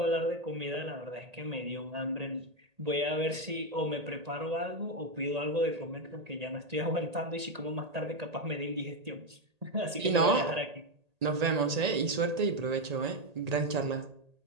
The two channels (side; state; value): left; late; 1.8 ms